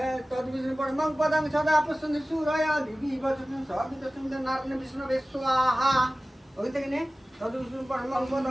তদ্বিষ্ণু পরমং পদং সদা প্রসন্ন সুরায় দিবি বচন সবিত সুন্দর নারায়ণ বিষ্ণু বেস্বাহা। ওই থেকে নে তদ্বিষ্ণু পরমং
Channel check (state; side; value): normal; both; correlation 0.97